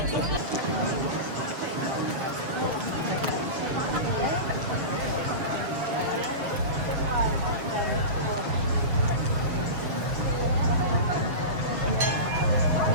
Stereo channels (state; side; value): late; left; 7.1 ms